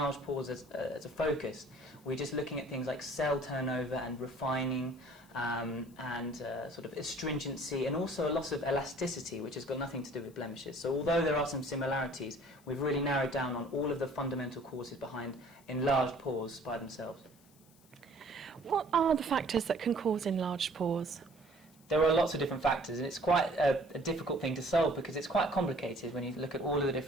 pores as a focus, we're just looking at things like cell turnover and refining, and sort of astringency, and also a loss of elasticity, which has got nothing to do with blemishes. So although there are some similarities, we've really narrowed down on all of the fundamental causes behind enlarged pores by themselves. What are the factors that can cause enlarged pores? There are lots of different factors, and it's quite a difficult thing to solve because it's quite complicated when you look at all of the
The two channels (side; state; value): left; noise; hiss, 28 dB below the sound